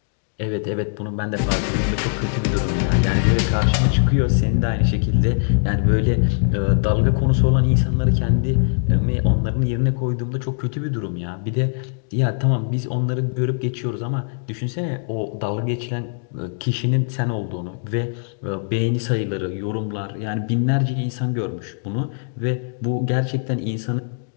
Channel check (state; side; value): silent; right; digital silence